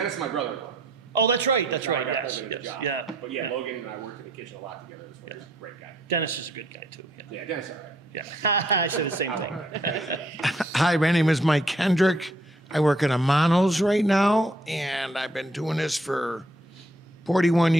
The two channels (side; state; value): both; normal; correlation 0.66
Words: is my brother-in-law. Oh, that's right. That's So I right. got Yes. him in the job. Yeah. But yeah, Logan and I worked in the kitchen a lot together as well. He's a great guy. Dennis is a good guy, too. Yeah, Dennis is all right. Yeah. I said the same thing. Hi, my name is Mike Kendrick. I work at Amano's right now, and I've been doing this for 41